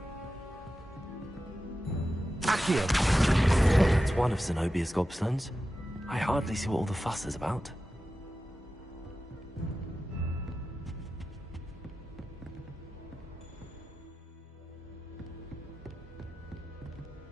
It's one of Zenobia's gobstones. I hardly see what all the fuss is about.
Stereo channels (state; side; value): normal; both; correlation 0.93